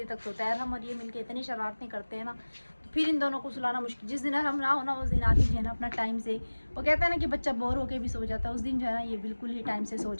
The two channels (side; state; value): both; inverted; correlation -1.00